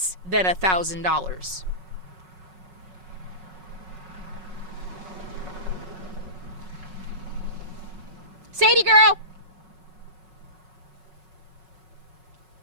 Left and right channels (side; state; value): left; late; 5.4 ms